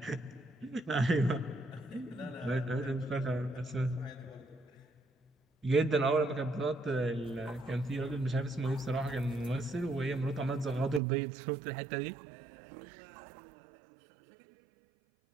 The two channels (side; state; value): left; drops out; at 11.0 s